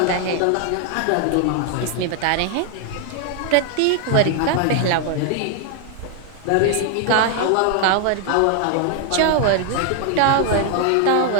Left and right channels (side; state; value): both; different; correlation 0.00